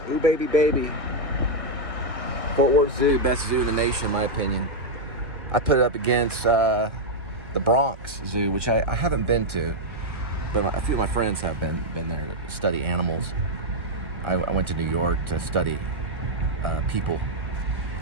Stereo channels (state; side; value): late; left; 1.3 ms